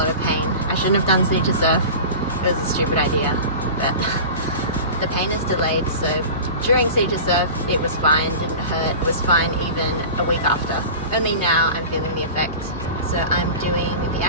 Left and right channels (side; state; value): both; inverted; correlation -0.34